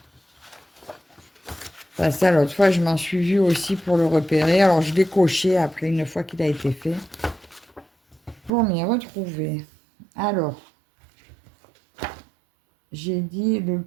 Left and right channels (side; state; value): left; drops out; at 8.5 s